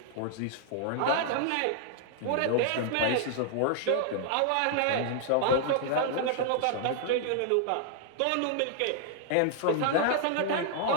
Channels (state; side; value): different; both; correlation 0.00